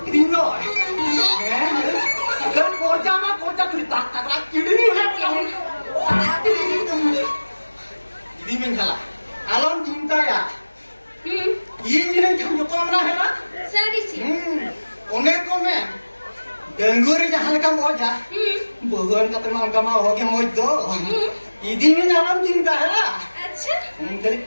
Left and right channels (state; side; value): inverted; both; correlation -1.00